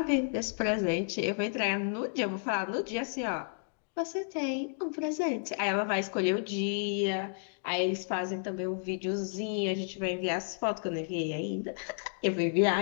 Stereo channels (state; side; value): silent; right; digital silence